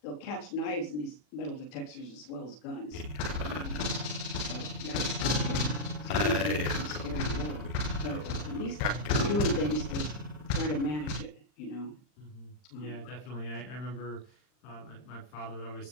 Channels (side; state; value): right; late; 40 ms